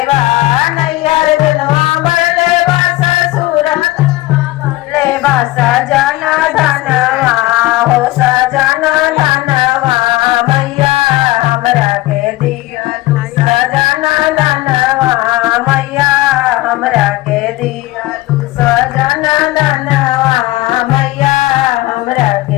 बा नैयर धनवा बढ़ले बा ससुर धनवा बढ़ले बा सजन धनवा हो सजन धनवा मैया हमरा के दियालू सजन धनवा मैया हमरा के दियालू सजन धनवा मैया हमरा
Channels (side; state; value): right; quieter; 18.6 dB